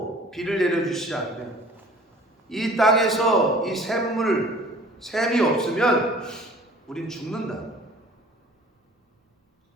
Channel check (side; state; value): both; normal; correlation 0.49